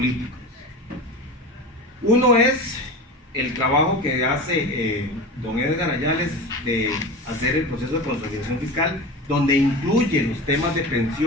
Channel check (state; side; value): normal; both; correlation 0.29